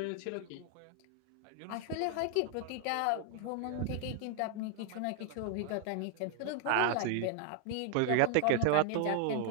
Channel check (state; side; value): different; both; correlation 0.00